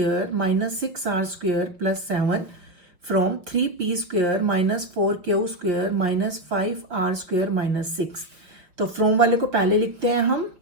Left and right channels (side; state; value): left; late; 5.6 ms